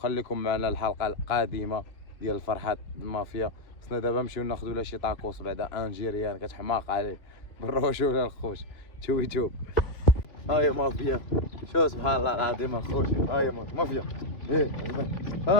معنا الحلقه القادمه ديال الفرحات المافيا. خصنا دابا نمشيو ناخذوا لا شي طاكوس بعدا انجيريان كتحماق عليه بالرجوله الخوش. توب هاي مافيا. شو سبحان الله العظيم الخوش. هاي مافيا ايه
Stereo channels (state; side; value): late; right; 3.2 ms